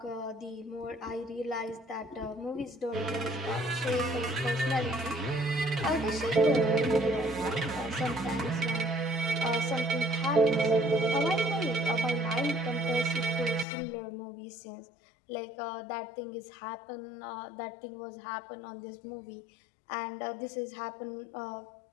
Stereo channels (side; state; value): right; drops out; at 13.7 s